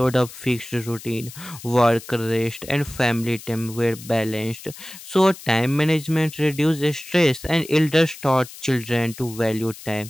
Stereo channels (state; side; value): noise; left; hiss, 16 dB below the sound